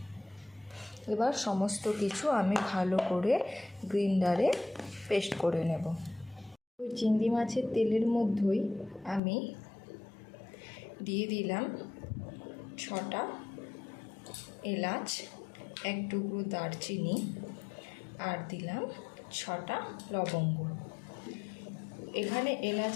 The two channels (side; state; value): right; drops out; at 9.2 s